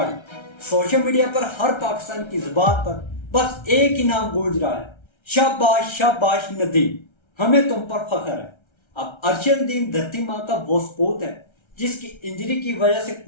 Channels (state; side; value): late; right; 1.3 ms